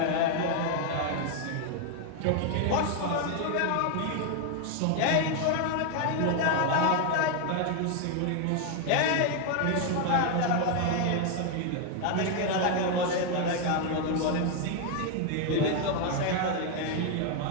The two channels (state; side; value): different; both; correlation 0.00